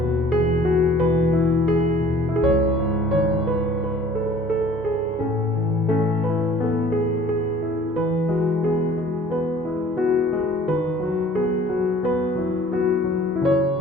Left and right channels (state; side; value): normal; both; correlation 0.51